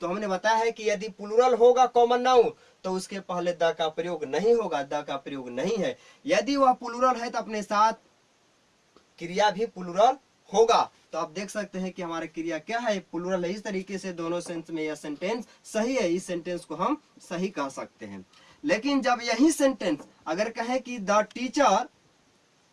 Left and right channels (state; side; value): identical; both; correlation 1.00